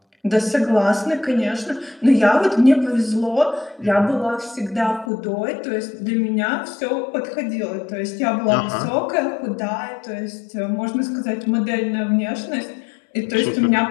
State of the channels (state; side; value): drops out; right; at 5.1 s